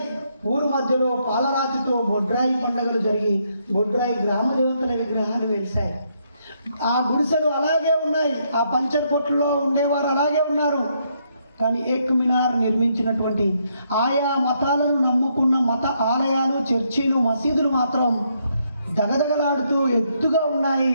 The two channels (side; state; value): both; inverted; correlation -0.75